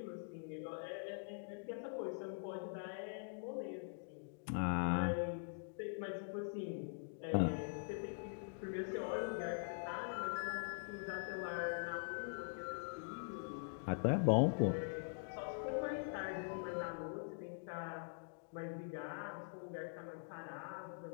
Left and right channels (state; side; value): silent; right; digital silence